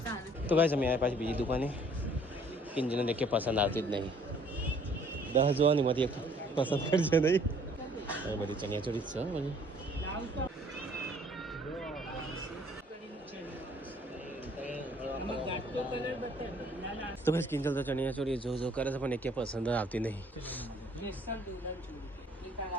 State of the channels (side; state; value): both; normal; correlation 0.59